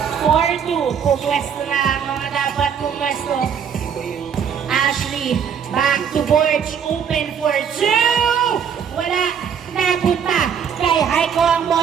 4-2. Pumwesto na ang mga dapat pumwesto. Ashley. Back to Borge. Open for 2. Wala. Napunta kay Haiko ang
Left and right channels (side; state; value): left; quieter; 7.6 dB